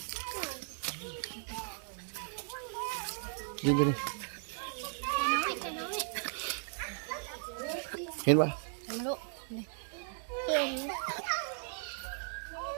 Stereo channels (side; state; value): left; silent; 54 dB below the other